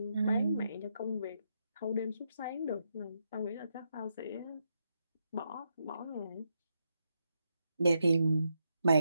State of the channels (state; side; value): inverted; both; correlation -0.82